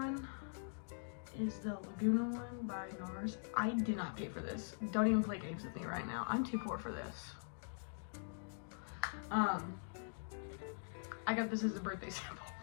is the Laguna one by NARS. I did not pay for this. Don't even play games with me right now. I'm too poor for this. I got this as a birthday sample.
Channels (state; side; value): silent; right; digital silence